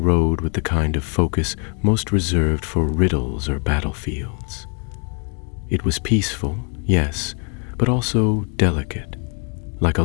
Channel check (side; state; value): right; quieter; 39.2 dB